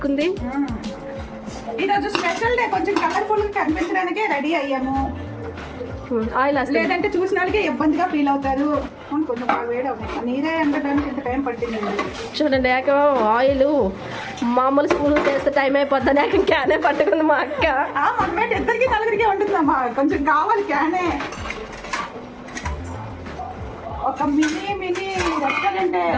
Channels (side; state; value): both; identical; correlation 1.00